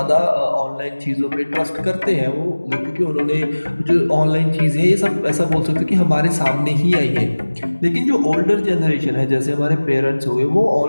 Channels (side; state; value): both; inverted; correlation -1.00